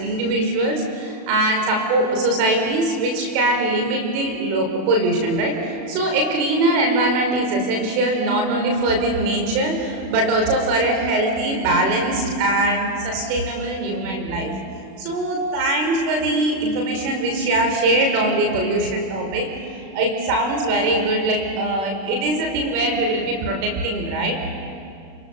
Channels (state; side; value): late; left; 36 ms